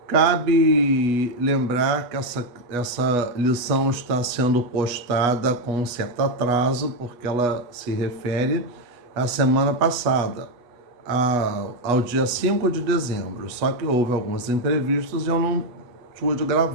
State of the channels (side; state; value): left; late; 8.3 ms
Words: Cabe lembrar que essa lição está sendo postada com um certo atraso, porque ela se refere à semana passada, ao dia 5 de dezembro. Só que houve alguns imprevistos e eu não pude